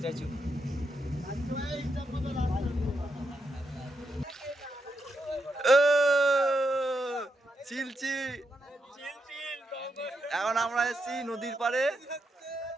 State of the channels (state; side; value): normal; both; correlation 0.83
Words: চিলচি এখন আমরা এসেছি নদীর পাড়ে,